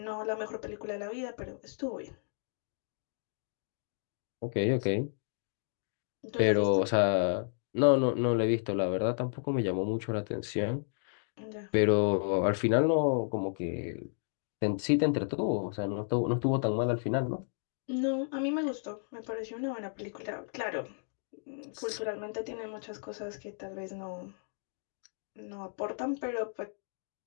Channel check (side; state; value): right; silent; digital silence